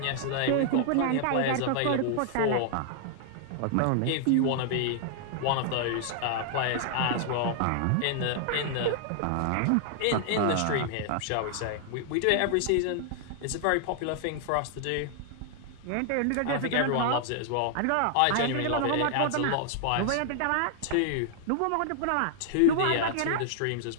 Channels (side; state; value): both; different; correlation 0.00